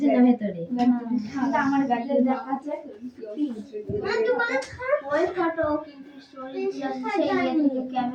না ভেতরে আমার গাড়িতে দেখাচ্ছে ওই ফটো কিন্তু স্টোরেজ সেই থেকে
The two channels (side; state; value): both; identical; correlation 1.00